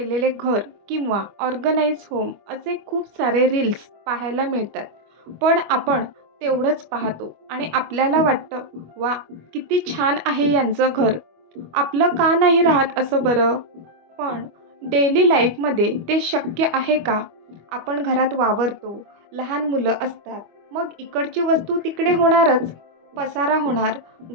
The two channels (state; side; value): late; left; 25 ms